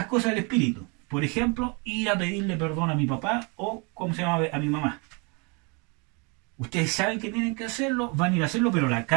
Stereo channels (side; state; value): left; quieter; 32.0 dB